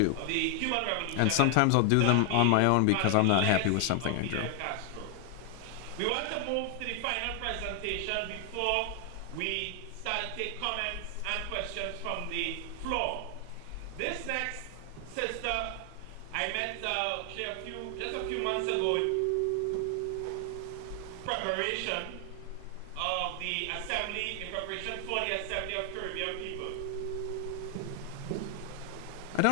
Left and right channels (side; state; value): both; different; correlation 0.00